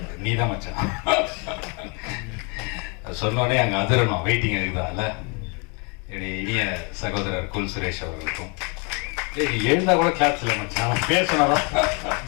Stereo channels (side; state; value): right; quieter; 33.8 dB